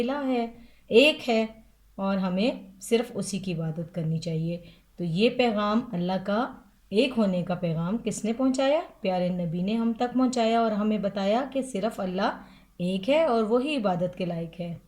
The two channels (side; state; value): both; identical; correlation 1.00